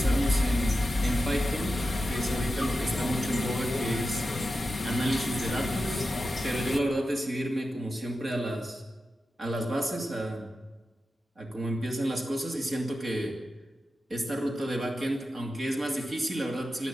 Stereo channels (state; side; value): normal; both; correlation 0.91